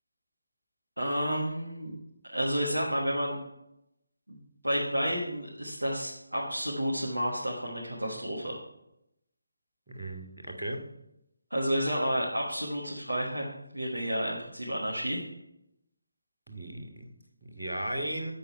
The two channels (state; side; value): inverted; both; correlation -0.91